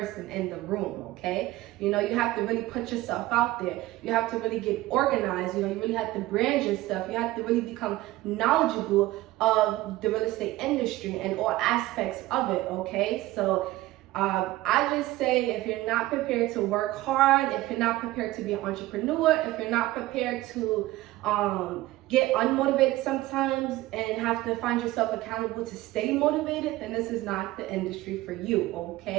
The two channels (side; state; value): left; quieter; 17.5 dB